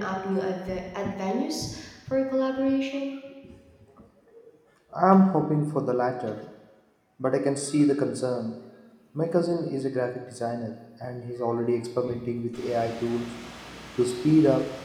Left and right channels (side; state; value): both; identical; correlation 1.00